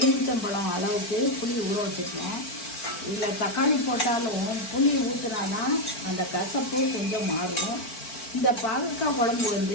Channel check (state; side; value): late; right; 4.5 ms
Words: அளவுக்கு புளி ஊற வச்சுருக்கேன். இதில் தக்காளி போட்டாலும் புளி ஊற்றினாதான் அந்த கசப்பு கொஞ்சம் மாறும். இந்த பாகக்காய் குழம்பு